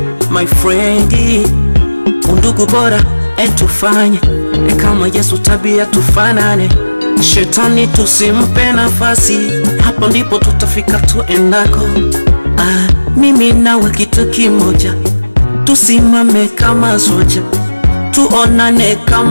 my friend? Undugu bora etufanye kama Yesu, tabia tufanane. Shetani tusimpe nafasi, hapo ndipo tutafika tuendako. Mimi nawe kitu kimoja, tusimame kama soja, tuonane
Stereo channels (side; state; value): both; inverted; correlation -1.00